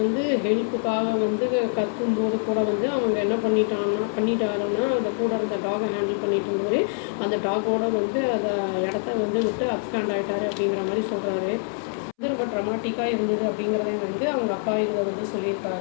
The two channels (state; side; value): silent; right; 62 dB below the other